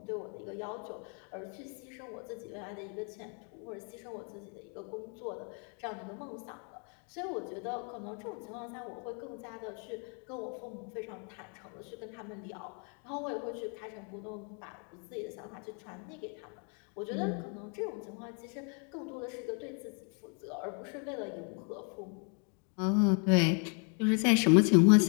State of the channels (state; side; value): quieter; right; 39.5 dB